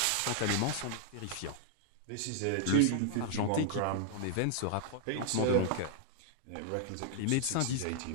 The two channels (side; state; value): both; different; correlation 0.00